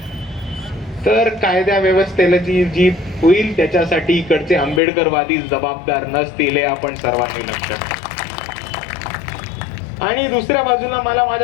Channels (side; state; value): right; drops out; at 4.8 s